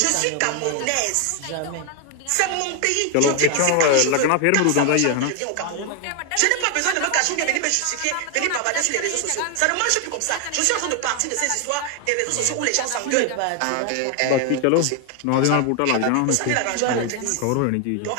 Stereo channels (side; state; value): both; different; correlation 0.00